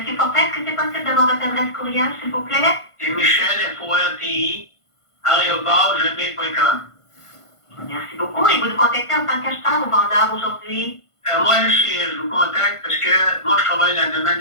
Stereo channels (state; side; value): late; right; 1.5 ms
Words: Fortin, est-ce que c'est possible d'avoir votre adresse courriel, s'il vous plaît? C'est Michel, FORTI, @gmail.com. Merci beaucoup. Et vous nous contactez en tant qu'acheteur ou vendeur aujourd'hui? Moi, je vous contacte parce que moi, je travaille dans le domaine